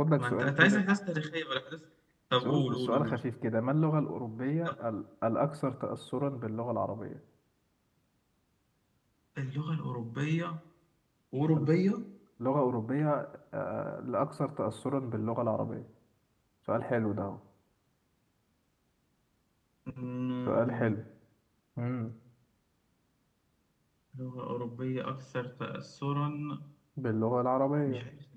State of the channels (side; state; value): both; identical; correlation 1.00